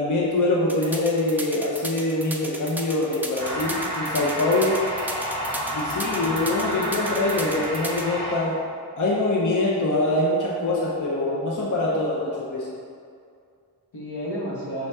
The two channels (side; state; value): both; normal; correlation 0.03